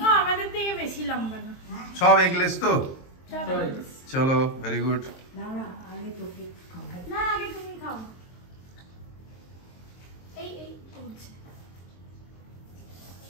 আমাদের থেকে বেশি লম্বা না। সব এগলেস তো। সব eggless। চলো, ভেরি গুড। না না আগে তোকে খাওয়াই। না আগে তুমি খাও। এই এই করছে।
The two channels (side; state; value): right; late; 23 ms